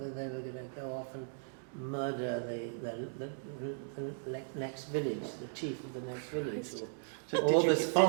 they were going to go off and murder the next village, the chief of the next village, or this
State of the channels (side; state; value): left; silent; digital silence